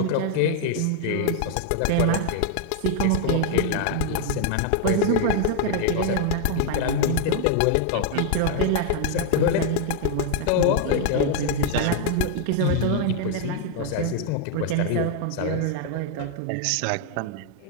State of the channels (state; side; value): different; both; correlation 0.00